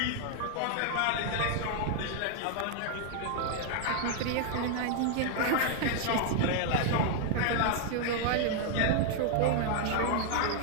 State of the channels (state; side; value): different; both; correlation 0.00